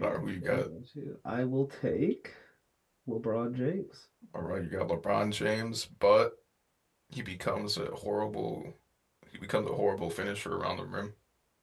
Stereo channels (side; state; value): both; identical; correlation 1.00